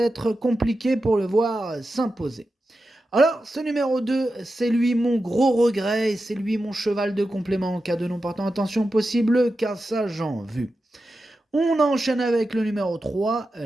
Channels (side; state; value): both; normal; correlation 0.91